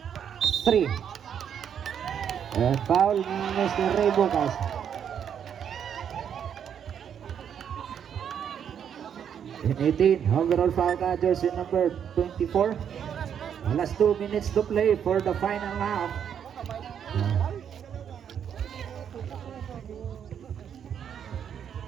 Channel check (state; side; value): quieter; left; 8.4 dB